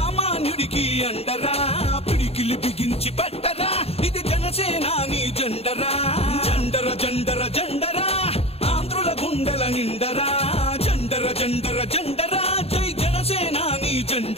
అండరా పిడికిలి బిగించి పట్టరా ఇది జనసేనాని జెండరా జండర జండర జండరా ఆంధ్రుల గుండెల నిండరా జండర జండర జండరా జై జనసేనాని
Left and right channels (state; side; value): late; right; 0.29 ms